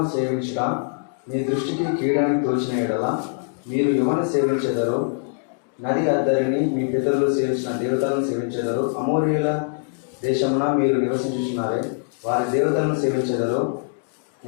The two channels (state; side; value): silent; right; digital silence